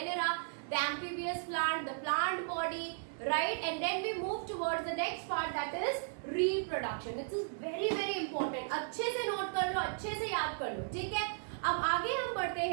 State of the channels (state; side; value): silent; left; digital silence